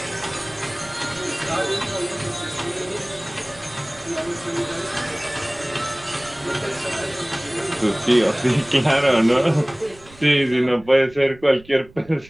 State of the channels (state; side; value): noise; right; rumble, 23 dB below the sound